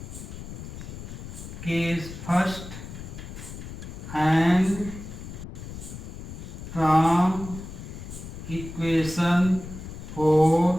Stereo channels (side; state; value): left; noise; rumble, 11 dB below the sound